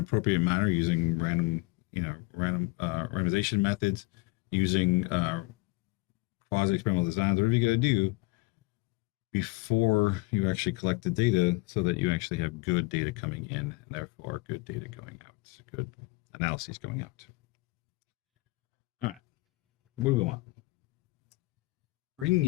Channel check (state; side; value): quieter; right; 24.3 dB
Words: manner using randomization methods, using quasi-experimental designs, whatever you got to do before you actually collect the data, so that you actually have good data coming in, and therefore good data going out, good analyses going out. All right, what do we want? Bringing